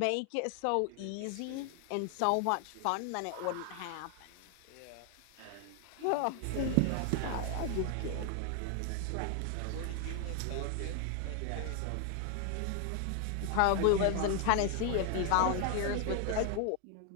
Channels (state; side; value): different; both; correlation 0.00